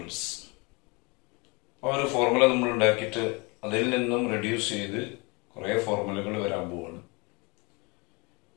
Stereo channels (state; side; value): quieter; right; 28.5 dB